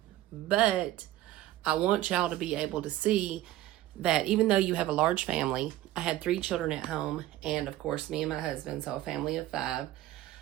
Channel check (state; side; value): quieter; left; 15.0 dB